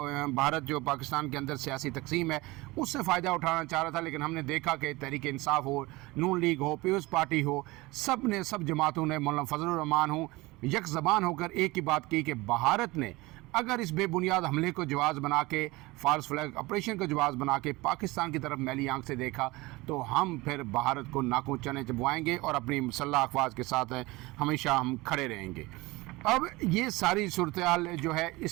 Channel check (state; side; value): quieter; left; 21.7 dB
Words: भारत जो पाकिस्तान के अंदर सियासी तकसीम है उससे फ़ायदा उठाना चाह रहा था, लेकिन हमने देखा कि तहरीक इंसाफ हो, नून लीग हो, पीपल्स पार्टी हो, सब जमातों ने, मौलाना फजलुर रहमान हो, यक ज़बान होकर एक ही बात की कि भारत ने अगर इस बेबुनियाद हमले को जवाज़ बना के, फॉल्स फ्लैग ऑपरेशन को जवाज़ बना के पाकिस्तान की तरफ मैली आंख से देखा, तो हम फिर भारत को नाकों चने चबवाएंगे और अपनी मुसल्लह अफवाज के साथ हमेशा हम खड़े रहेंगे। अब ये सारी सूरत हाल जो है,